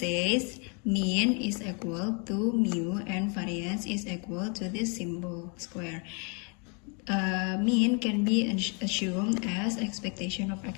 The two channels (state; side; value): quieter; right; 35.7 dB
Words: mean is equal to mu and variance is equal to this symbol square. Mean can be assumed as expectation of